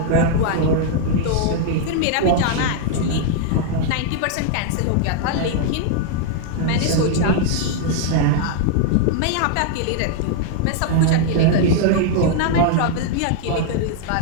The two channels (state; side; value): different; both; correlation 0.00